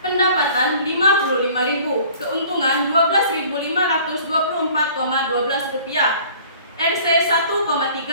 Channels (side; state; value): both; inverted; correlation -0.50